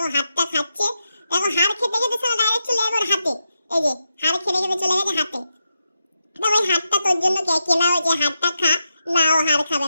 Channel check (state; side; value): inverted; both; correlation -0.87